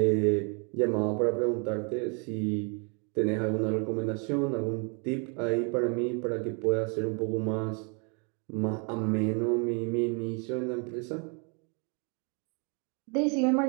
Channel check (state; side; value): quieter; left; 36.2 dB